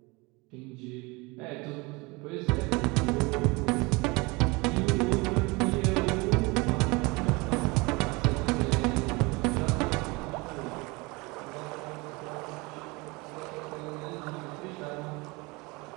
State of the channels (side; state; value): left; quieter; 25.6 dB